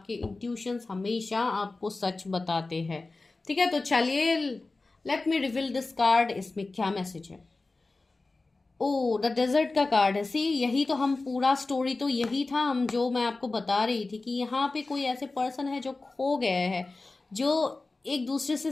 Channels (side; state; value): right; quieter; 3.4 dB